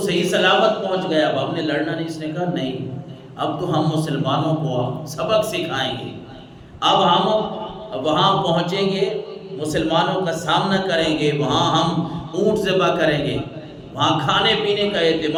سلامت پہنچ گیا، اب ہم نے لڑنا نہیں۔ اس نے کہا نہیں، اب تو ہم مسلمانوں کو سبق سکھائیں گے، اب ہم وہاں پہنچیں گے، مسلمانوں کا سامنا کریں گے، وہاں ہم اونٹ ذبح کریں گے، وہاں کھانے پینے کا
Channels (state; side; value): identical; both; correlation 1.00